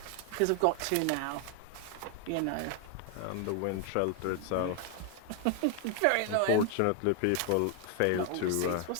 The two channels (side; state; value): both; different; correlation 0.00